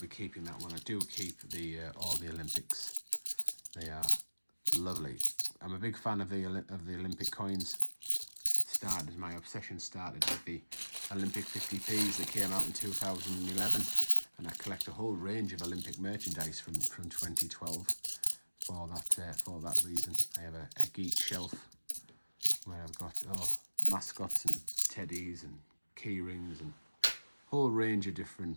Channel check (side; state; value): both; inverted; correlation -1.00